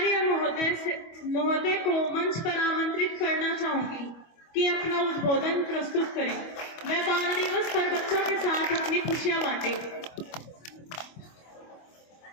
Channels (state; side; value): late; right; 25 ms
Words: महोदय को मंच पर आमंत्रित करना चाहूंगी कि अपना उद्बोधन प्रस्तुत करें। वह बाल दिवस पर बच्चों के साथ अपनी खुशियां बांटे।